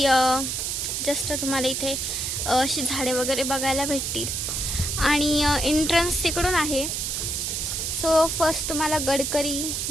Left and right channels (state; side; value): noise; right; hiss, 1 dB below the sound